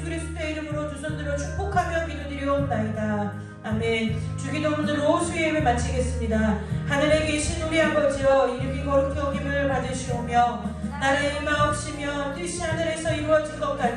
그리스도의 이름으로 두 손들어 축복하며 기도드리옵나이다. 아멘. 주기도문으로 로수의 예배 마치겠습니다. 하늘에 계신 우리 아버지여 이름이 거룩히 여김을 받으시오며 나라의 임하옵시며 뜻이 하늘에서 이루어진 것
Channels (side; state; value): both; identical; correlation 1.00